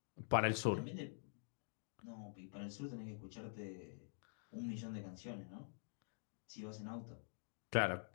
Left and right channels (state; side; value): silent; right; digital silence